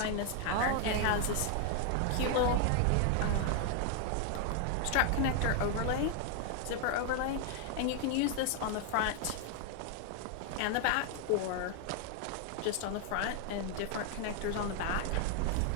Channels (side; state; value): both; different; correlation 0.00